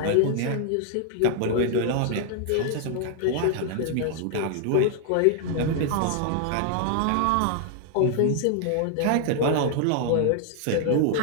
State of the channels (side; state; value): both; different; correlation 0.00